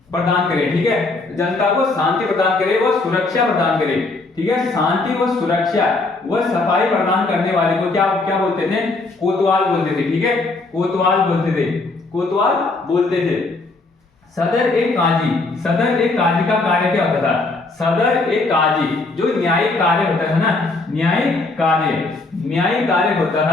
प्रदान करे, ठीक है, जनता को शांति प्रदान करे, वह सुरक्षा प्रदान करे, ठीक है, शांति व सुरक्षा व सफाई प्रदान करने वाले को क्या बोलते थे? कोतवाल बोलते थे, ठीक है, कोतवाल बोलते थे। सदर एक काजी का कार्य क्या होता था? सदर एक काजी जो न्यायिक कार्य होता था ना, न्यायिक कार्य होता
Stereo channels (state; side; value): quieter; right; 3.4 dB